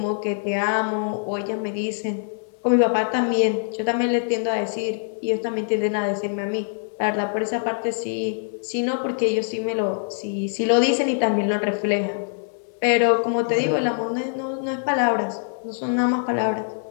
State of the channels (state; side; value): silent; right; 59 dB below the other